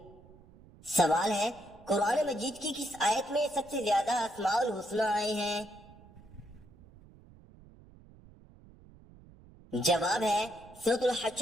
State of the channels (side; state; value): right; noise; rumble, 23 dB below the sound